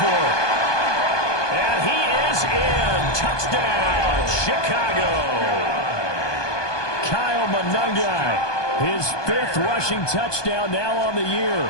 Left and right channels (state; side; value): late; right; 1.2 ms